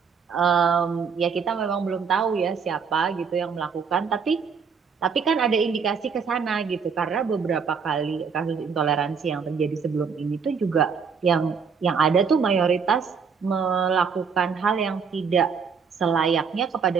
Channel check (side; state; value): left; quieter; 6.0 dB